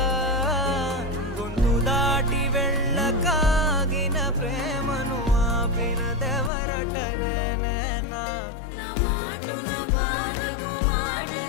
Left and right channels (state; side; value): drops out; right; at 6.5 s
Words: గొంతు దాటి వెళ్ళకాగిన ప్రేమను ఆపినదెవరటనే నేనా